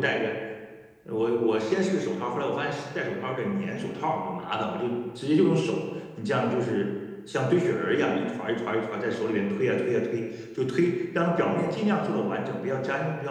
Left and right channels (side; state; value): both; identical; correlation 1.00